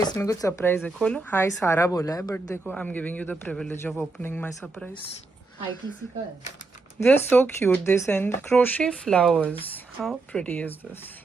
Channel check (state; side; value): quieter; left; 3.5 dB